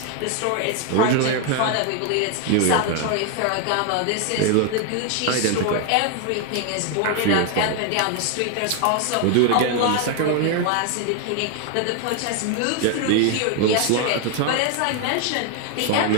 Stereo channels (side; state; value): both; different; correlation 0.01